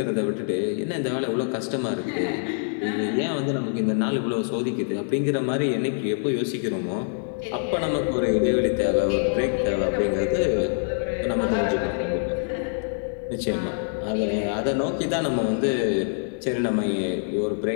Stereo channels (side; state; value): right; silent; digital silence